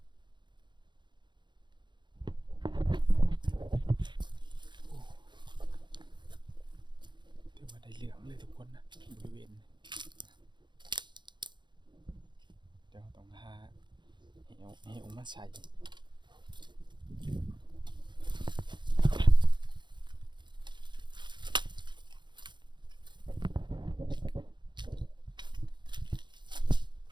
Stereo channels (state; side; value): late; left; 0.22 ms